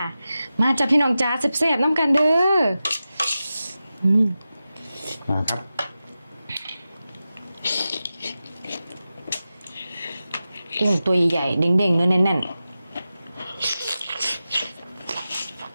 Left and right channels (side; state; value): both; inverted; correlation -0.93